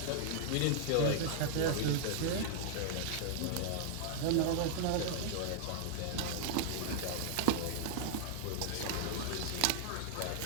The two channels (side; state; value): both; different; correlation -0.01